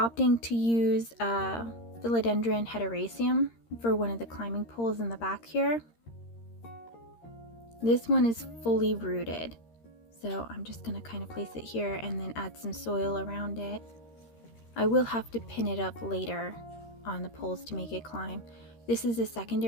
to use philodendron heteroecium for one of the climbing poles in the back here. This one is fully rooted, so I'm just going to kind of place it here and then add some soil around it. I will have to pin it up later on the poles to make it climb. This is a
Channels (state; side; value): late; right; 13 ms